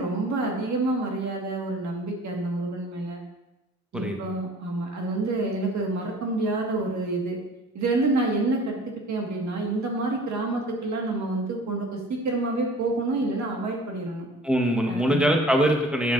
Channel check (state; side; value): normal; both; correlation 0.48